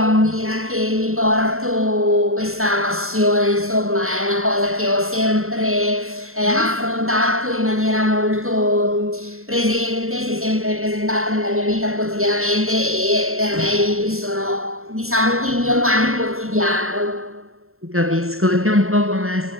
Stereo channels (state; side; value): late; left; 0.62 ms